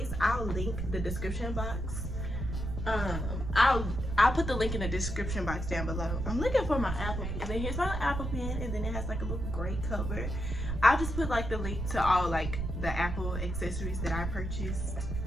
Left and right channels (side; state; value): right; noise; rumble, 4 dB below the sound